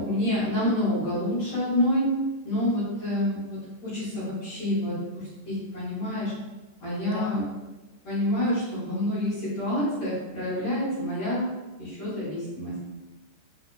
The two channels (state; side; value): late; right; 14 ms